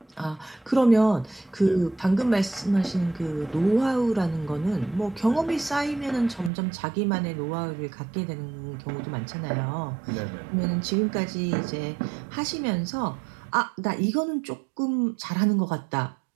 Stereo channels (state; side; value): drops out; left; at 6.5 s